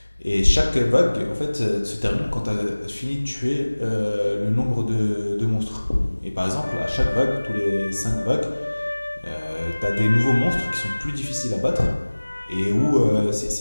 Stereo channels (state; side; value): inverted; both; correlation -1.00